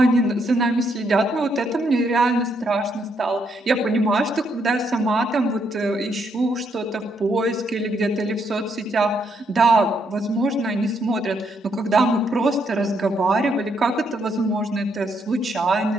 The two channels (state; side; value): normal; both; correlation 0.75